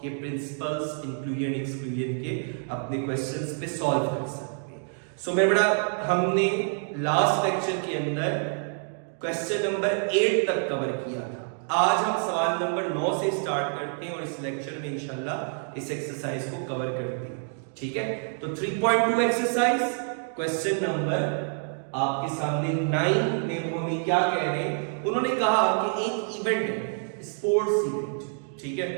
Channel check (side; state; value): left; silent; 58 dB below the other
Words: ये प्रिंसिपल्स इंक्लूजन एक्सक्लूजन के अपने क्वेश्चंस पे सॉल्व कर सकते हैं। सो मेरा बेटा हमने लास्ट लेक्चर के अंदर क्वेश्चन नंबर 8 तक कवर किया था। आज हम सवाल नंबर 9 से स्टार्ट करते हैं और इस लेक्चर में इंशाल्लाह इस एक्सरसाइज को कवर करते हैं, ठीक है। तो 3.2 एक्सरसाइज क्वेश्चन नंबर आपके सामने 9 में वो हमें क्या कह रहे हैं, उन्होंने कहा कि एक इवेंट है, स्पोर्ट्स इवेंट, ठीक है,